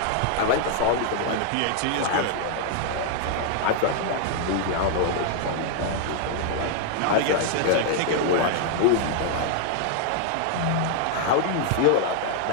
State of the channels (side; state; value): both; different; correlation 0.00